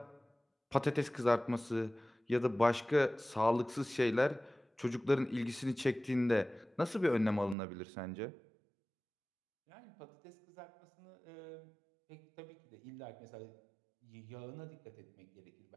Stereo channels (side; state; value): left; drops out; at 7.6 s